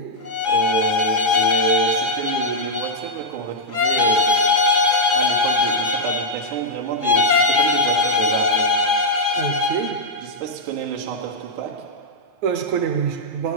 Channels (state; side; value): late; left; 8.5 ms